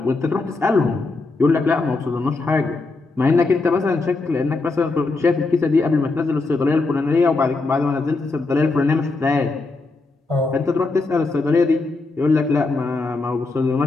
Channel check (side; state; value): right; quieter; 3.5 dB